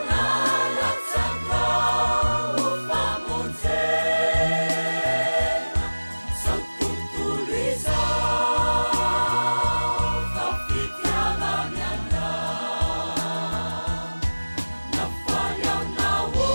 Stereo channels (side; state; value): both; inverted; correlation -1.00